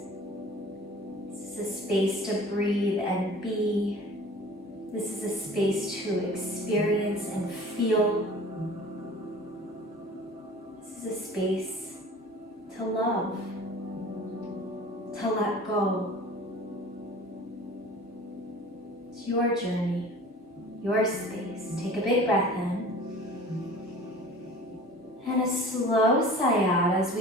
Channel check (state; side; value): normal; both; correlation 0.43